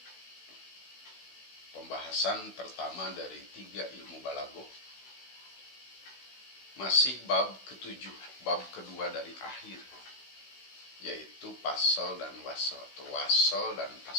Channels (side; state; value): right; late; 16 ms